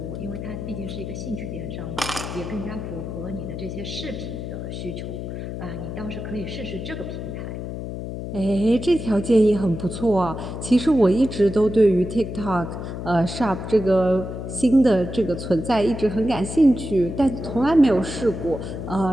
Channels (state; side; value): noise; left; hum, 7 dB below the sound